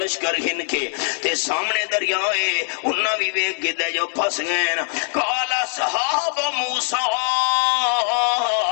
ہن کے تے سامنے دریا ہے انہاں بھی ویکھ کے دے جو پھس گئے کالا صحاب موسیٰ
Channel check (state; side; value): silent; right; digital silence